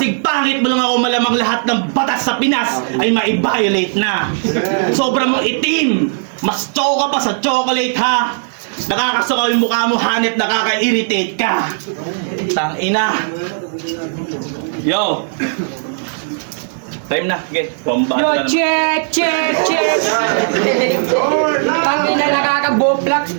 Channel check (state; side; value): silent; left; digital silence